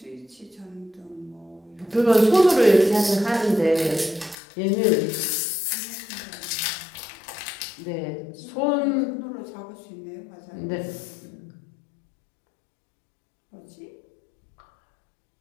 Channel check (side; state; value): right; drops out; at 4.4 s